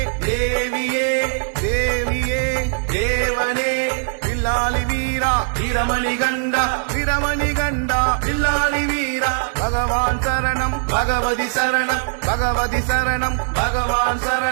தேவியே தேவியே தேவனே பில்லாளி வீரா வீரமணி கண்டா வீரமணி கண்டா பில்லாளி வீரா பகவான் சரணம் பகவதி சரணம் பகவதி சரணம் பகவான்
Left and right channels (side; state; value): left; silent; digital silence